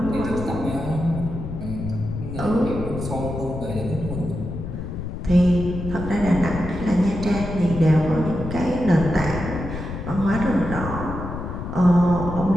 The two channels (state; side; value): noise; left; rumble, 7 dB below the sound